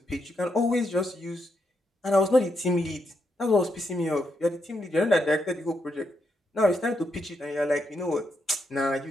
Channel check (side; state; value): both; normal; correlation 0.80